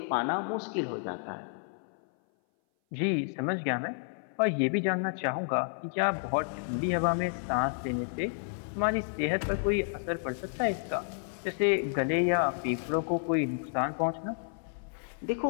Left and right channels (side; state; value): right; silent; 57 dB below the other